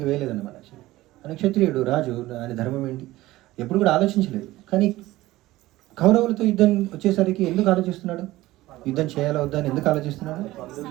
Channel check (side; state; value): left; quieter; 17.4 dB